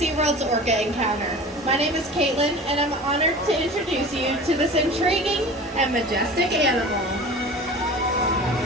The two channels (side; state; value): both; normal; correlation 0.37